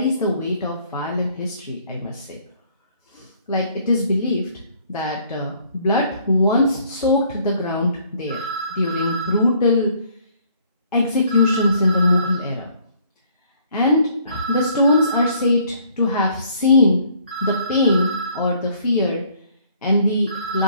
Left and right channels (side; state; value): both; inverted; correlation -0.61